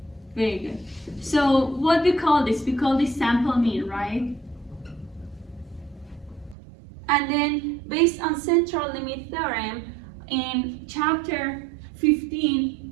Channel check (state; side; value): drops out; left; at 6.6 s